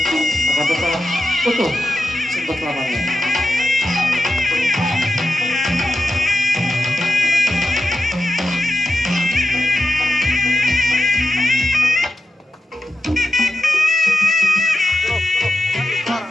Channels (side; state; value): both; normal; correlation 0.90